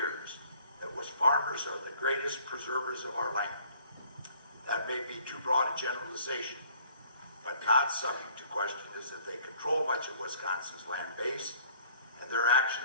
that farmers are the greatest preservers of our land. That may be too broad a generalization, but not subject to question is that they control much of Wisconsin's land base, and their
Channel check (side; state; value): both; inverted; correlation -0.57